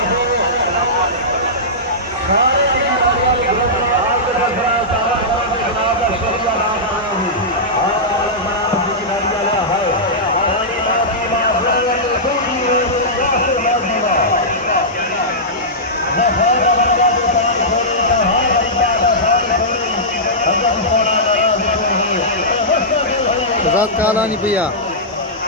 रात काला नहीं भैया।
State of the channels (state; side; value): normal; both; correlation -0.14